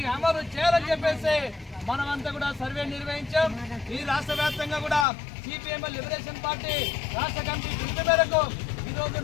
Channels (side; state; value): right; drops out; at 5.1 s